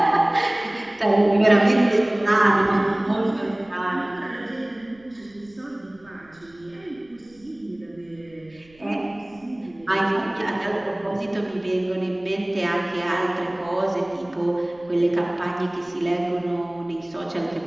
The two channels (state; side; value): noise; right; rumble, 29 dB below the sound